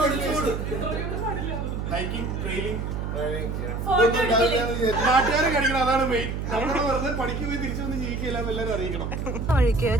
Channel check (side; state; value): right; noise; hum, 4 dB below the sound